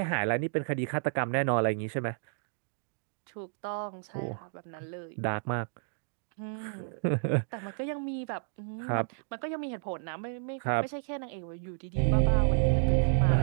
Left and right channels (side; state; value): left; silent; digital silence